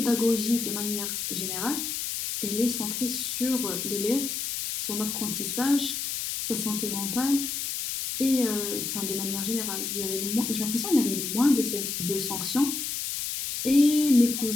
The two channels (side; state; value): left; noise; hiss, 3 dB below the sound